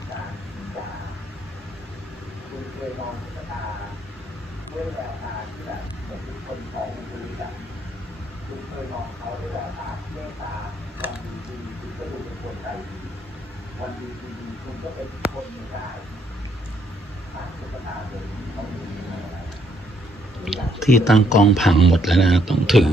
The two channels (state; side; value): normal; both; correlation 0.71